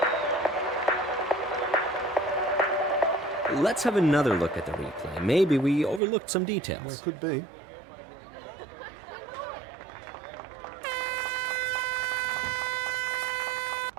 Let's have another look at the replay. Maybe we overlooked some details. Well, could be.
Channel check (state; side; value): drops out; left; at 6.0 s